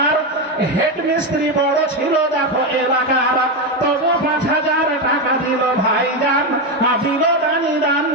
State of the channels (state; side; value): normal; both; correlation 0.11